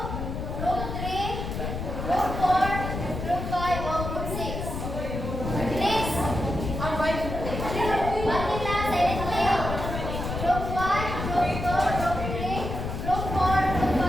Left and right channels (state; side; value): noise; left; rumble, 5 dB below the sound